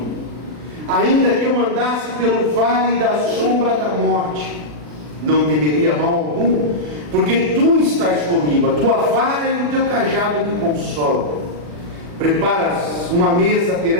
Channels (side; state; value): left; late; 40 ms